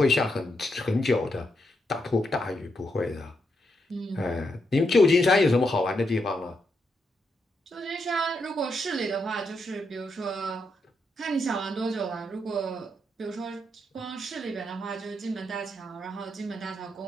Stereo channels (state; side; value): normal; both; correlation 0.81